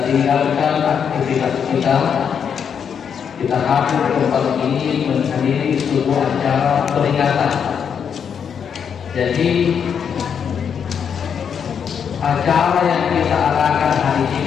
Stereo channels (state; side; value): quieter; right; 7.4 dB